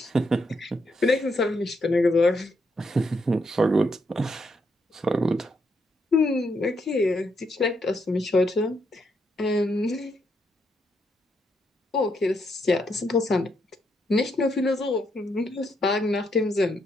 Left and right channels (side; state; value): both; normal; correlation 0.78